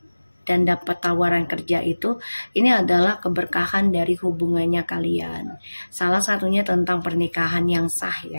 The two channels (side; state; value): both; inverted; correlation -1.00